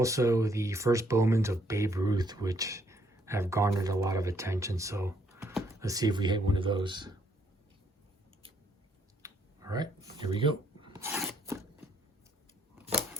the first Bowmans of Babe Ruth, which have garnered a lot of attention. So let's see if we hit one of those. All right, here we go.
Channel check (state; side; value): normal; both; correlation 0.69